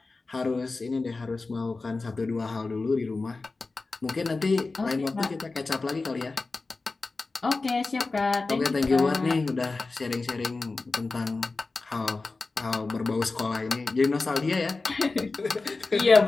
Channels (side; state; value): right; quieter; 3.7 dB